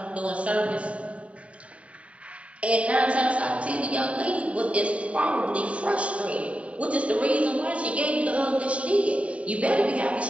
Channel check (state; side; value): late; left; 0.065 ms